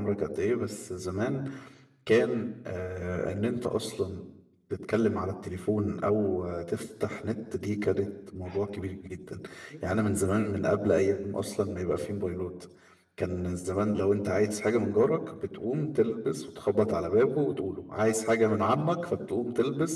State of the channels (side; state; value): both; identical; correlation 1.00